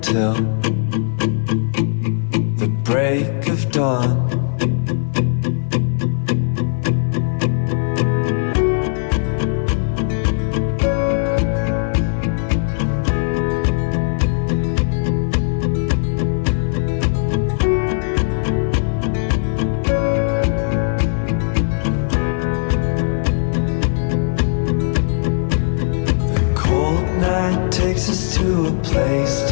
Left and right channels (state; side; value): silent; right; digital silence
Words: the break of dawn. The cold night takes us to a place